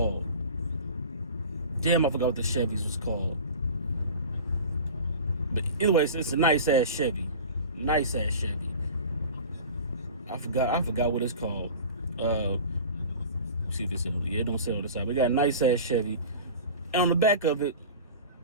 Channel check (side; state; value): both; inverted; correlation -0.36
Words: Damn, I forgot what the Chevys was called. But anyways, it's a nice ass Chevy. Nice ass Chevy. I forgot what it's called. See if this is, yeah, it don't say on the side. But it got a nice ass Chevy. And on the back of it,